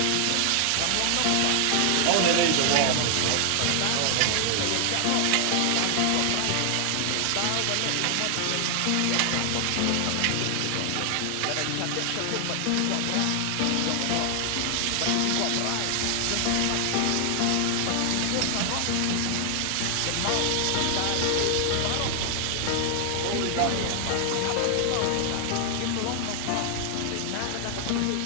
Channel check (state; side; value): different; both; correlation 0.00